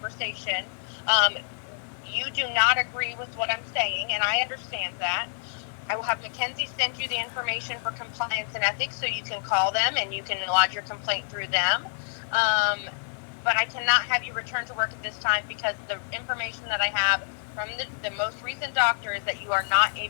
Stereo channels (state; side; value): silent; right; digital silence